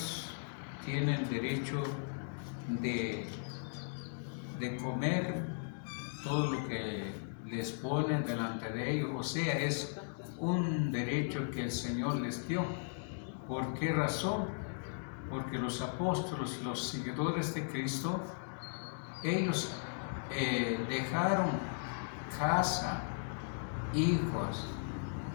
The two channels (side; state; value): right; silent; digital silence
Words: tienen derecho de comer todo lo que les ponen delante de ellos, o sea, es un derecho que el Señor les dio. ¿Por qué razón? Porque los apóstoles, los seguidores de Cristo, ellos dejaron casa, hijos,